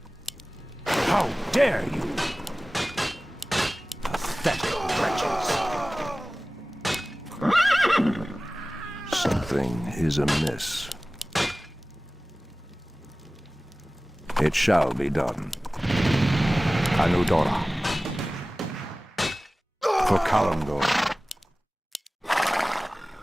How dare you! Pathetic wretches. Something is amiss. It shall be done. Anudora. For Kalimdor.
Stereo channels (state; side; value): normal; both; correlation 0.97